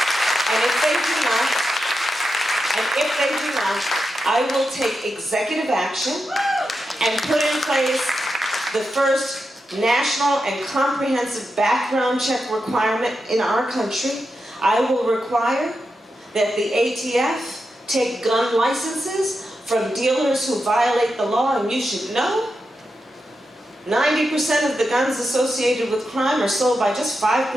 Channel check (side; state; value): both; normal; correlation 0.88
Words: And if they do not, I will take executive action and put in place the first national and comprehensive background check requirement in our country. I will require that the ATF take gun licenses from dealers who violate the law, and you should know 90% of the guns associated with crime are sold by just